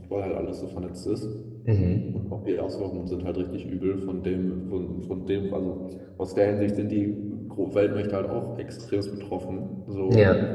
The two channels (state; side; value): identical; both; correlation 1.00